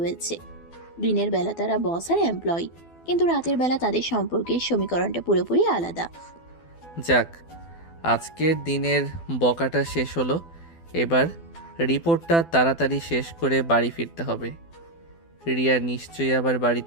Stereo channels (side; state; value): right; late; 12 ms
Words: দিনের বেলা তারা বস আর এমপ্লয়ি, কিন্তু রাতের বেলা তাদের সম্পর্কের সমীকরণটা পুরোপুরি আলাদা। যাক, আজকের দিনের বকাটা শেষ হলো। এবার রিপোর্টটা তাড়াতাড়ি শেষ করে বাড়ি ফিরতে হবে। রিয়া নিশ্চয়ই আবার